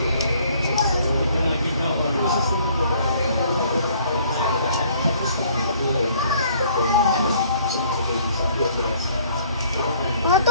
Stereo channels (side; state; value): both; inverted; correlation -0.59